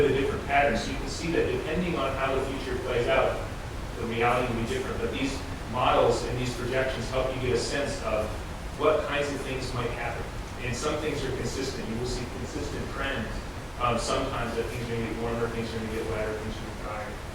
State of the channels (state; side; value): identical; both; correlation 1.00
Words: of a different pattern. So you can see that depending on how the future plays out, the reality will be different. But these models and these projections help you get a sense of what kinds of things might happen. And some things are consistent. You will see consistent trends. Sometimes that things are going to get warmer, things are going to get wetter, things are going to get